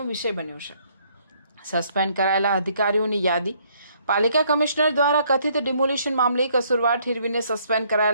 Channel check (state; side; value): inverted; both; correlation -0.66